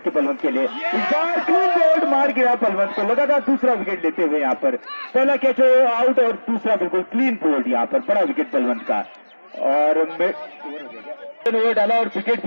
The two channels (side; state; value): both; inverted; correlation -1.00